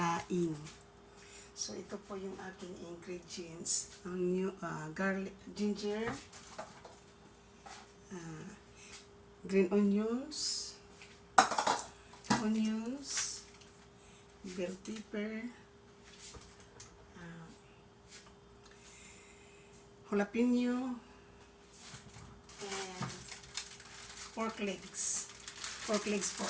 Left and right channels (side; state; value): both; identical; correlation 1.00